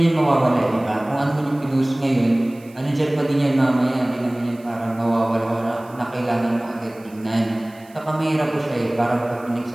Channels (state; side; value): noise; right; hiss, 27 dB below the sound